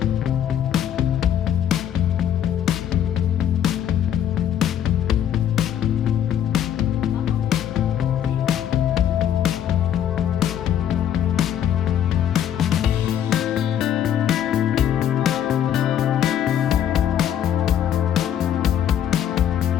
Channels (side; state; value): right; quieter; 10.0 dB